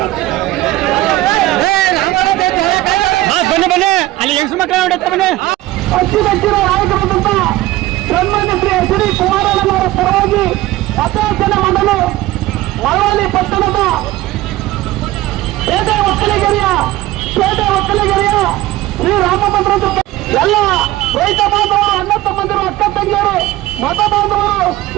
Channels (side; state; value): left; quieter; 16.9 dB